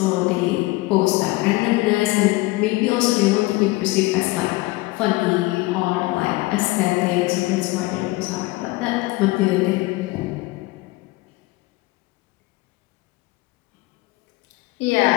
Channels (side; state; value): right; quieter; 21.0 dB